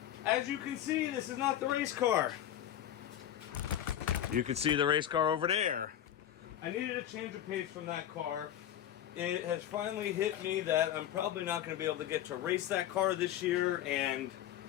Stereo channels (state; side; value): quieter; right; 11.2 dB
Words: As you can see, this is not the race car. You can see the race car over there. I needed a change of pace from that car. It has finally hit me that I'm probably not going to be able to get to race that car this year, and